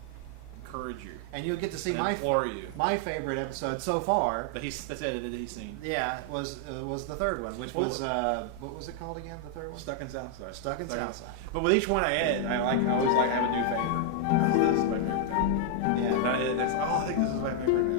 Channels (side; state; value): both; different; correlation 0.00